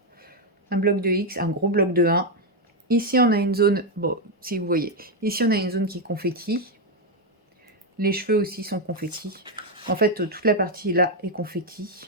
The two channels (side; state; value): both; normal; correlation 0.04